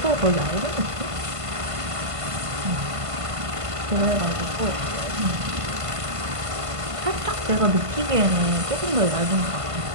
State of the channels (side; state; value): left; late; 1.5 ms